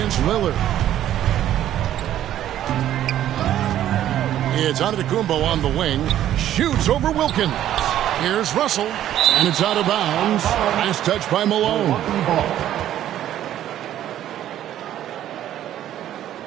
Lillard. It's Antetokounmpo on the wing. Shoots over Wilkins. Here's Russell. And it's out of bounds. Nice touch by Malone.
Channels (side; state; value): left; quieter; 11.9 dB